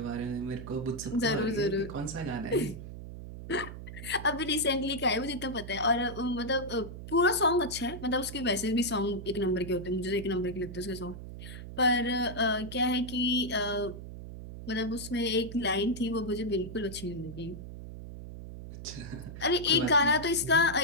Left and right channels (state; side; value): noise; right; hum, 11 dB below the sound